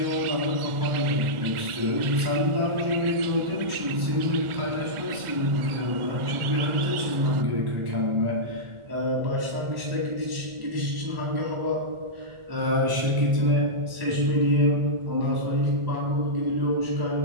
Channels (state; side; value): late; left; 1.4 ms